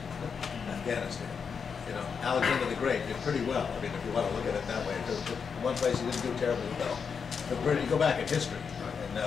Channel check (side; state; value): right; quieter; 6.1 dB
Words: Afghanistan. Alexander the Great did pretty well. I mean, if you want to look at it that way, one place he didn't do terribly well. But you go back in history, and